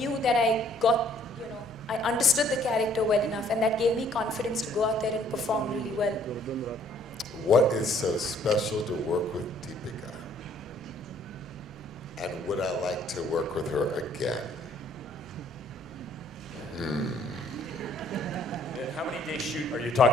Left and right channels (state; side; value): normal; both; correlation 0.61